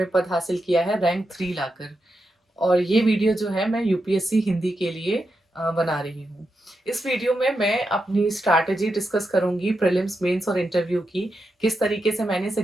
पद हासिल किया है, रैंक 3 लाकर। और ये वीडियो जो है मैं यूपीएससी हिंदी के लिए बना रही हूँ। इस वीडियो में मैं अपनी स्ट्रैटेजी डिस्कस करूंगी प्रीलिम्स, मेंस और इंटरव्यू की, किस तरीके से मैंने इस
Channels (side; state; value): both; normal; correlation 0.86